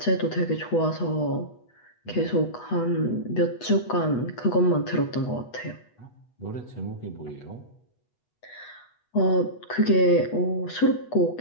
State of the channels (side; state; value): right; late; 8.2 ms